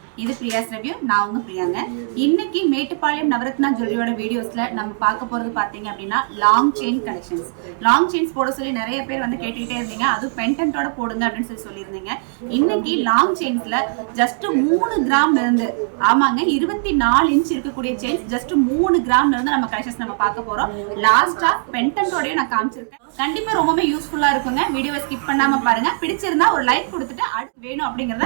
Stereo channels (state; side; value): silent; left; 66 dB below the other